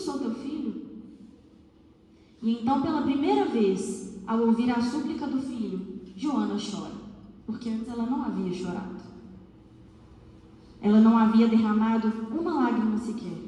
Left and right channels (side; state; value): both; identical; correlation 1.00